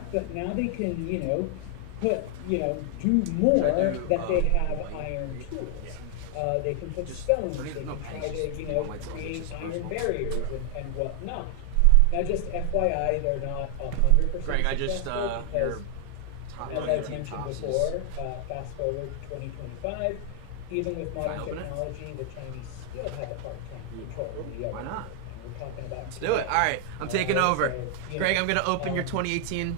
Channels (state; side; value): different; both; correlation 0.00